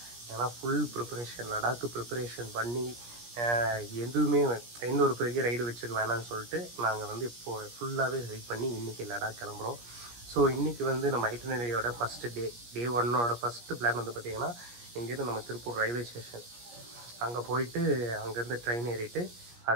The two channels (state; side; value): late; left; 17 ms